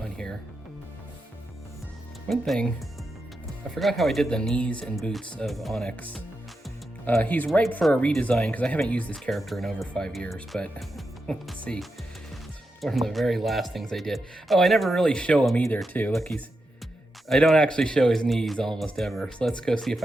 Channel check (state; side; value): normal; both; correlation 0.87